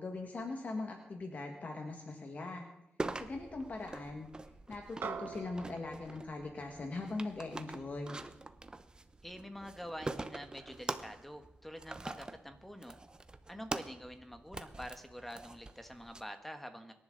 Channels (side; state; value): both; normal; correlation 0.86